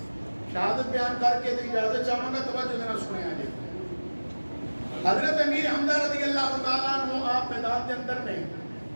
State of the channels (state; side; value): inverted; both; correlation -1.00